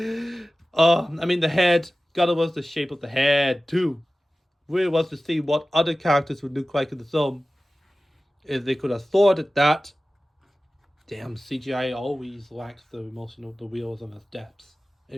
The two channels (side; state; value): both; normal; correlation 0.96